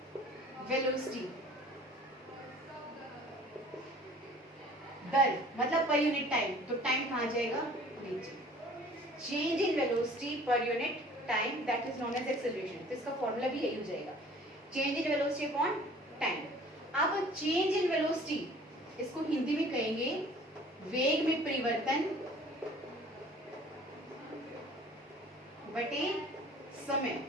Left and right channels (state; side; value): normal; both; correlation 0.50